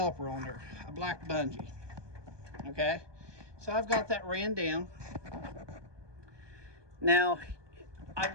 on there, a black bungee. Okay, so I've got that ran down. Now, I've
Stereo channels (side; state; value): left; late; 1.2 ms